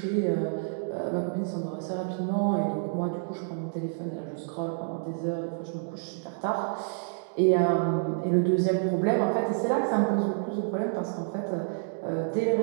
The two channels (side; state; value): left; silent; digital silence